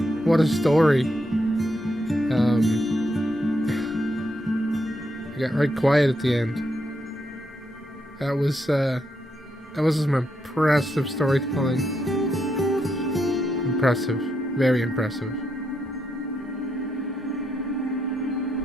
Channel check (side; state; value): both; normal; correlation 0.80